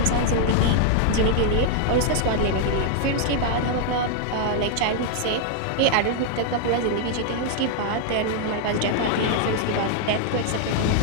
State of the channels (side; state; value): both; different; correlation 0.00